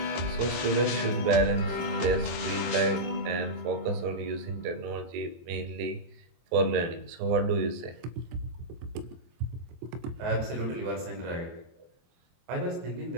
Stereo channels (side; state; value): left; late; 23 ms